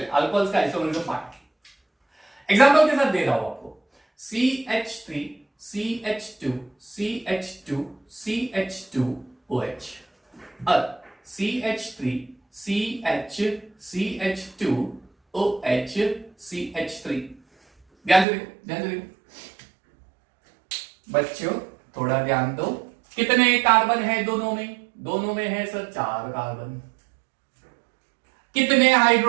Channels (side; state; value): left; drops out; at 18.2 s